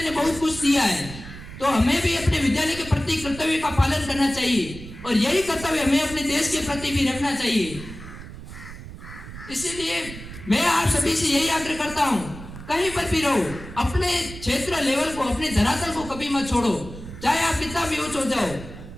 ने बहुत कुछ दिया है, तो हमें भी अपने विद्यालय के प्रति कर्तव्य का पालन करना चाहिए और यही कर्तव्य हमें अपने देश के प्रति भी रखना चाहिए। इसीलिए मैं आप सभी से यही आग्रह करता हूं, कहीं पर भी रहो, अपने क्षेत्र लेवल को, अपने धरातल को कभी मत छोड़ो, चाहे आप कितना भी ऊंच हो जाओ,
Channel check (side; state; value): right; noise; rumble, 13 dB below the sound